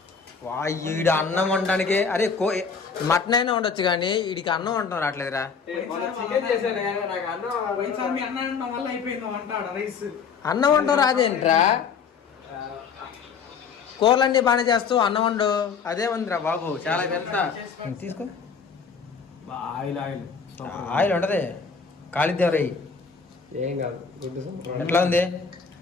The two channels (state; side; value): quieter; right; 5.8 dB